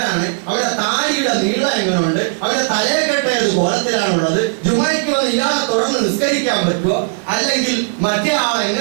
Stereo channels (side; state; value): left; silent; digital silence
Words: അവരുടെ താടിയുടെ നീളം എങ്ങനെയുണ്ട്? അവരുടെ തലയെക്കെട്ട ഏത് കോലത്തിലാണുള്ളത്? ജുമയ്ക്ക് വന്ന് ഇയാളെ തുടർന്ന് നിസ്കരിക്കാൻ പറ്റുമോ? അല്ലെങ്കിൽ മറ്റേ ആൾ